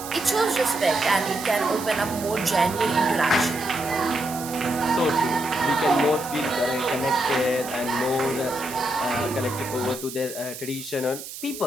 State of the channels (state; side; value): noise; right; hiss, 11 dB below the sound